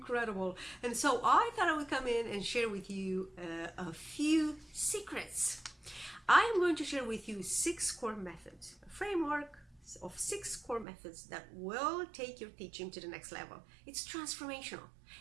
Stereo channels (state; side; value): drops out; left; at 10.9 s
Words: And so I thought I would come in and share with you a few secrets. I am going to share with you 6 core methods, a framework of 6 core methods that will take your teaching to the next level. It's transformational,